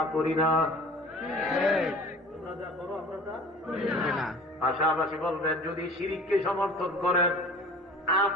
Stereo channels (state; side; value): normal; both; correlation 0.44